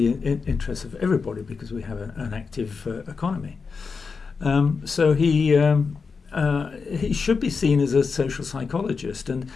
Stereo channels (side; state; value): right; quieter; 5.1 dB